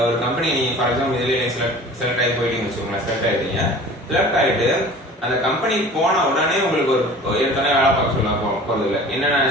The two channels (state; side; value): normal; both; correlation 0.43